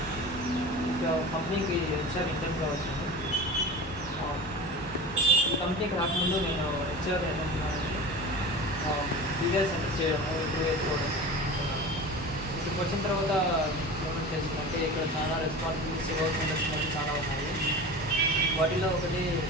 ఇంకా కంపెనీకి హెచ్ఆర్ ఇంటర్న్గా వచ్చాను. ఈ కంపెనీకి రాకముందు నేను హెచ్ఆర్ ఏమంటున్నానంటే బీబీఎస్ సెంటర్ చేయడము, ఇంప్రూవ్ చేసుకోవడం అనుకున్నాను. ఇక్కడికి వచ్చిన తర్వాత ఏమని చేసిందంటే ఇక్కడ చాలా రెస్పాన్సిబిలిటీస్, వర్క్ ఇండస్ట్రీ చాలా ఉన్నాయి. వాటిలో ఒకటి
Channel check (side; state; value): both; normal; correlation 0.33